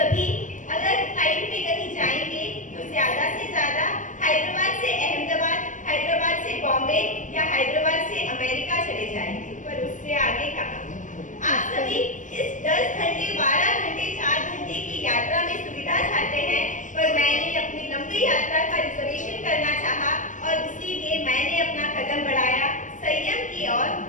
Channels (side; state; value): right; late; 0.37 ms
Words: अगर फ्लाइट में कहीं जाएंगे तो ज्यादा से ज्यादा हैदराबाद से अहमदाबाद, हैदराबाद से बॉम्बे या हैदराबाद से अमेरिका चले जाएंगे, पर उससे आगे कहाँ? आप सभी इस 10 घंटे, 12 घंटे, 4 घंटे की यात्रा में सुविधा चाहते हैं, पर मैंने अपनी लंबी यात्रा का रिजर्वेशन करना चाहा और इसीलिए मैंने अपना कदम बढ़ाया संयम की ओर